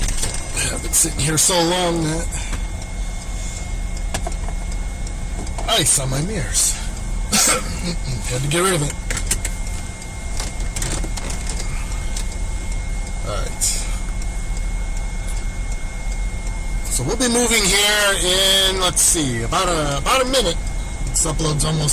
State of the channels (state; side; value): identical; both; correlation 1.00